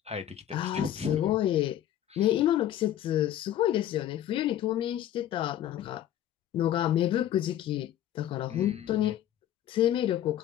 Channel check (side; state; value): right; quieter; 11.7 dB